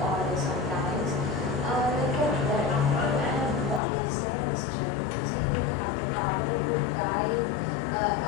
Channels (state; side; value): drops out; right; at 3.8 s